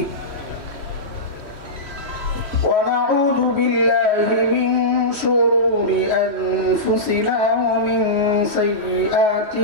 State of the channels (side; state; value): left; late; 3.1 ms